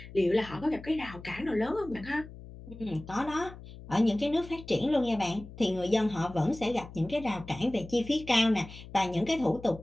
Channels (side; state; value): left; noise; hum, 16 dB below the sound